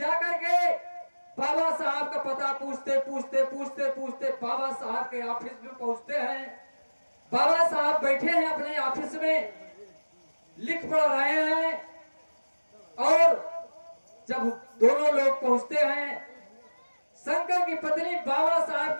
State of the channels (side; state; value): both; inverted; correlation -1.00